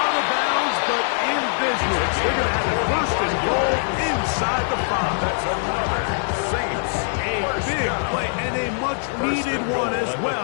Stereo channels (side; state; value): right; silent; digital silence